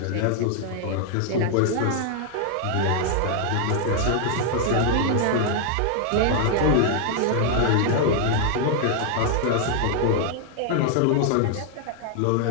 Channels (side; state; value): both; different; correlation 0.00